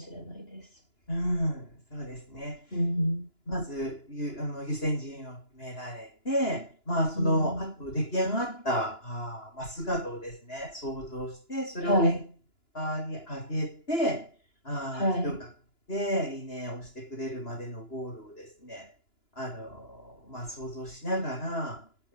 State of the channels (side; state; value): right; late; 2.9 ms